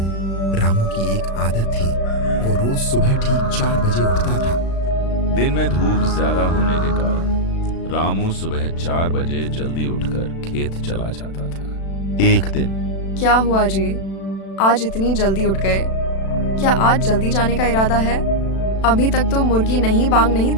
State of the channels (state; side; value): late; right; 36 ms